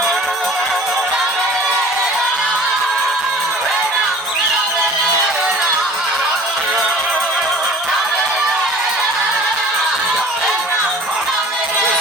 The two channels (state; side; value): normal; both; correlation 0.46